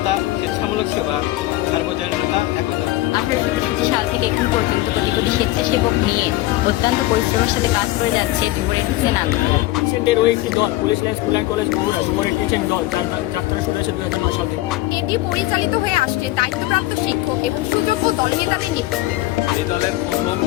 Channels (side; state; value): right; quieter; 17.5 dB